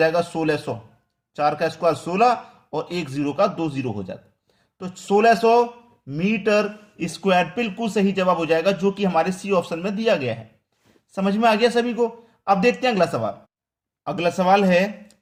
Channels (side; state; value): both; identical; correlation 1.00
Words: 1600। 4 का स्क्वायर 16 और एक जीरो का 2 जीरो हो जाता, तो 1600 मीटर स्क्वायर बिल्कुल सही जवाब हो जाएगा, जो कि हमारे सी ऑप्शन में दिया गया है। समझ में आ गया सभी को। अब देखते हैं अगला सवाल। अगला सवाल है,